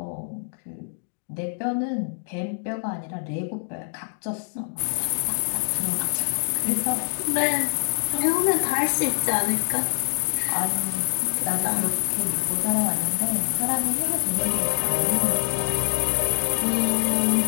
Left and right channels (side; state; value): right; silent; digital silence